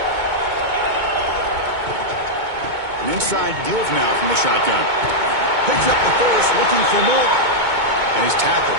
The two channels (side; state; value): left; late; 2.2 ms